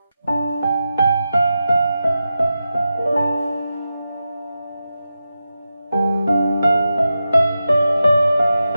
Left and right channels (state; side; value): inverted; both; correlation -0.91